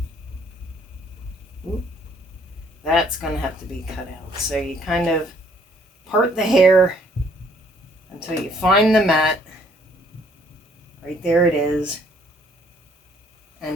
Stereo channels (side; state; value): both; normal; correlation 0.63